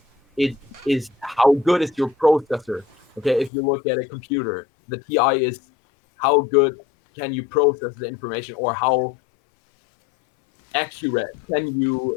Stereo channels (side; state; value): right; drops out; at 3.5 s